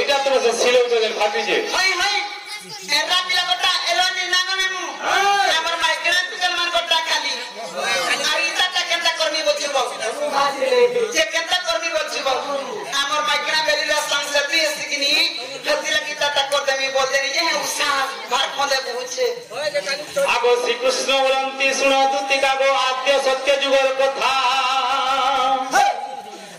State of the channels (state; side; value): identical; both; correlation 1.00